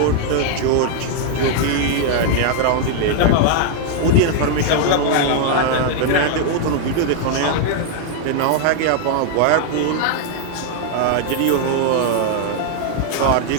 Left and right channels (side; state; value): both; different; correlation 0.00